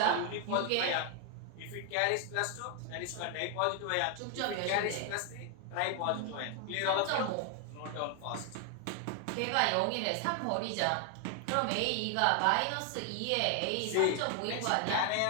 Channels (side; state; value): both; different; correlation 0.01